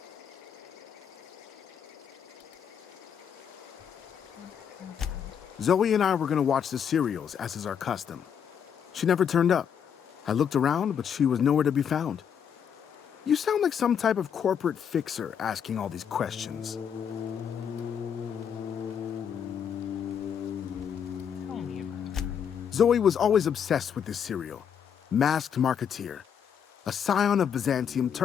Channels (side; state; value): right; quieter; 8.0 dB